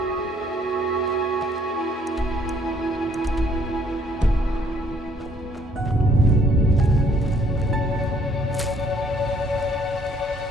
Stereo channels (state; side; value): normal; both; correlation 0.63